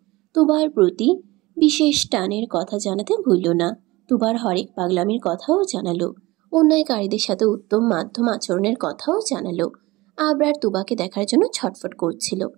তুবার প্রতি বিশেষ টানের কথা জানাতে ভুলল না। তুবার হরেক পাগলামির কথাও জানালো। অন্যায়কারীদের সাথে উত্তম মাধ্যম আচরণের কথাও জানালো। আবরার তুবাকে দেখার জন্য ছটফট করছিল।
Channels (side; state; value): left; quieter; 20.7 dB